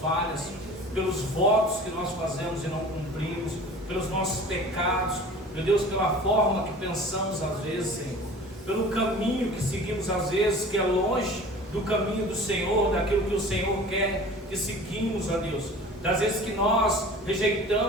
pelos votos que nós fazemos e não cumprimos, pelos nossos pecados, meu Deus, pela forma que pensamos às vezes, Senhor, pelo caminho que seguimos às vezes, que é longe do caminho do Senhor, daquilo que o Senhor quer que seguimos, ó Deus, das vezes que nós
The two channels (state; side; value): normal; both; correlation 0.42